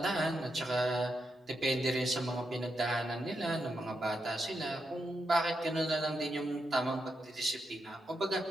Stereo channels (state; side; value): normal; both; correlation 0.84